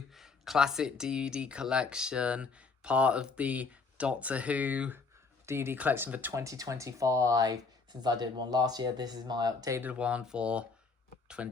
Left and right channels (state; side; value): quieter; right; 4.4 dB